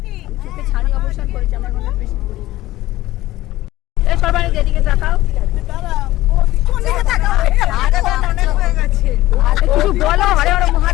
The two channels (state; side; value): quieter; right; 16.5 dB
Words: চোখে ছানি অবসান করেছে আমার মনে হয়, বেশি করি। এই সবাই যেদিকে তাকাও, কিছু বলো। হরে হরে